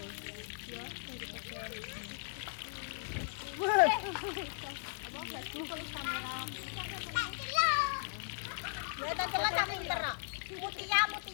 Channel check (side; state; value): right; silent; digital silence